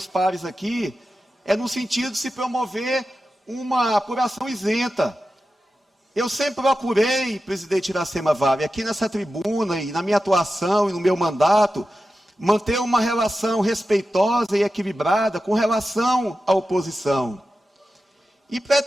pares aqui é no sentido de se promover uma apuração isenta. Eu sempre procurei, presidente Iracema Vale, aqui nessa tribuna e na minha atuação e no meu mandato, manter uma relação respeitosa e equilibrada com relação à oposição. E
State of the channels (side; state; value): both; normal; correlation 0.92